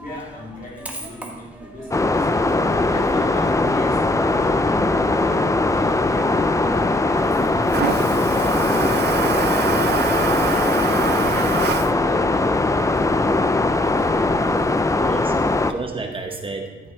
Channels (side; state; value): both; normal; correlation 0.65